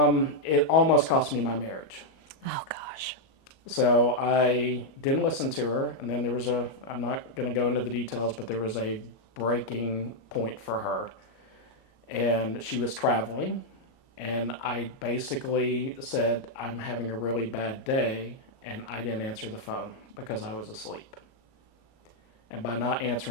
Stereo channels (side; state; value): right; late; 37 ms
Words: it almost cost me my marriage. Oh gosh. So I didn't listen to her, and then I'm not going to go into the details, but there was a breaking point for her. And she was traveling, and I basically said, I'm having a really bad day, and I didn't answer the phone because I was asleep. And by not